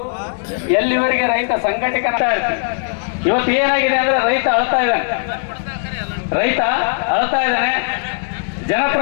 ಎಲ್ಲಿವರೆಗೆ ರೈತ ಸಂಘಟಕ ಇರ್ತೀವಿ. ಇವತ್ತು ಏನಾಗಿದೆ ಅಂದ್ರೆ ರೈತ ಅಳ್ತಾ ಇದ್ದಾನೆ,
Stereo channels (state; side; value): silent; right; 58 dB below the other